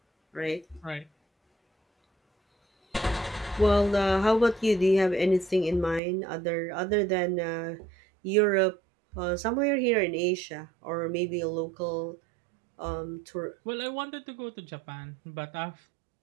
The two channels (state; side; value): drops out; left; at 6.0 s